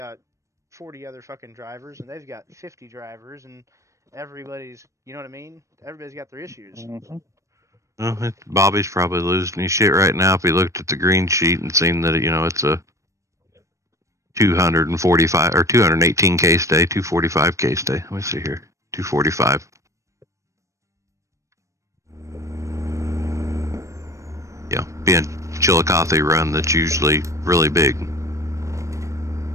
40 other fucking drivers and they've got 50 drivers and everybody's, you know what I mean? Everybody's got their issues. Well, Bobby's probably losing his shit right now if he looked at the green sheet and seen that, you know, it's a 245 or 218 case day, 245 case day. Let me see here. 245. Yeah, being Chillicothe run, that's usually really big.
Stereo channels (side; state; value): left; late; 0.15 ms